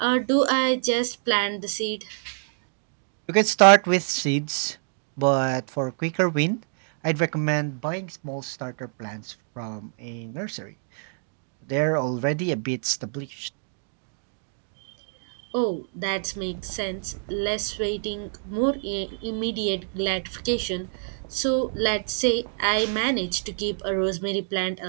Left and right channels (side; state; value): left; silent; digital silence